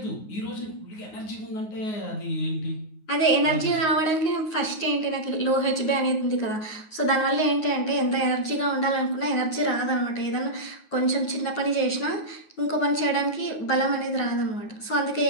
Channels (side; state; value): right; late; 9.5 ms